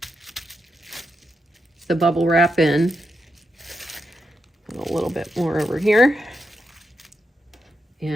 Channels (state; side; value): normal; both; correlation 0.85